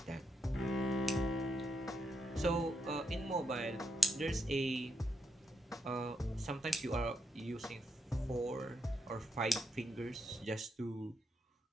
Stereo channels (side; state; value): both; normal; correlation 0.81